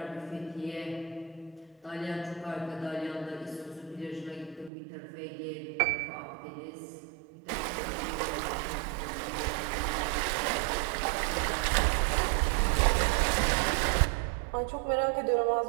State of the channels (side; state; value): left; drops out; at 4.7 s